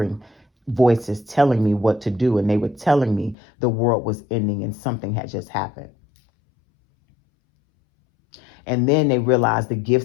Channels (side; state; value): right; drops out; at 3.4 s